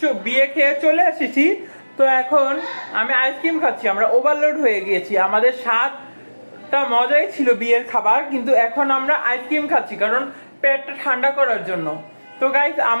বিয়ে খেয়ে চলে এসেছি। তো এখন আমি আইসক্রিম খাচ্ছি। আমরা ওভারলোড হয়ে গিয়েছি, আমাদের স্বাদটা মজাই ছিল বিয়ের খাবার, কিন্তু এখন আমরা আইসক্রিম খাচ্ছি কারণ পেটটা ঠান্ডা করার জন্য। তো গাইস,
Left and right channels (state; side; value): inverted; both; correlation -1.00